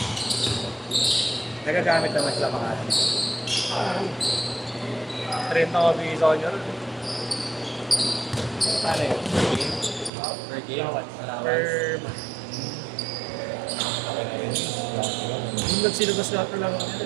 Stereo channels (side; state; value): left; drops out; at 10.1 s